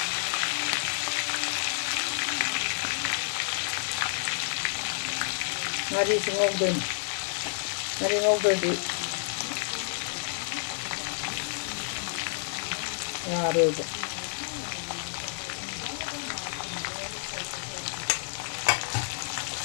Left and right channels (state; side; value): silent; right; digital silence